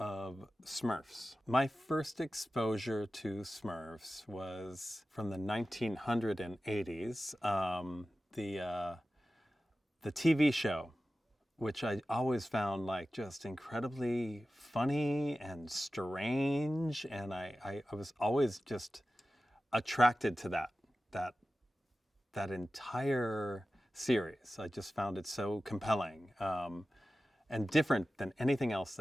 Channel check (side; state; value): both; normal; correlation 0.95